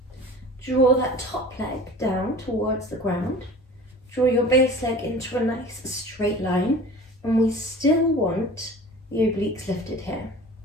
draw that top leg down towards the ground. Draw your base leg into a nice straight line, and we still want the obliques lifted here.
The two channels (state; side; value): normal; both; correlation 0.41